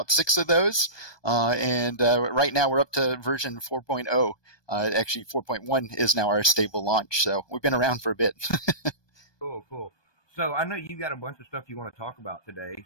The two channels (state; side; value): late; right; 1.2 ms